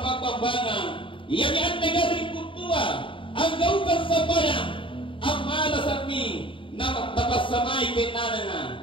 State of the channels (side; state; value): right; late; 0.25 ms